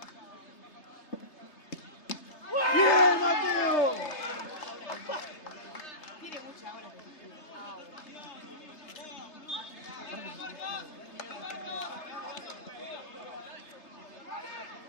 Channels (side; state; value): right; late; 3.3 ms